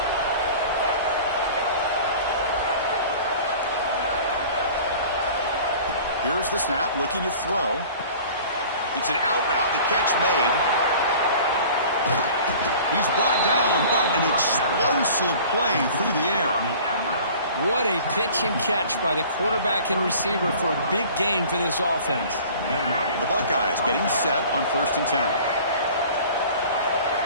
Here's the snap, looking to throw. It's an out route, the catch made. He's brought down, but an explosive play through the air. What a pitch and catch by the quarterback and receiver for a big gain for this offense. The Buckeyes getting set on 1st and 10.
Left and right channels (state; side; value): inverted; both; correlation -0.45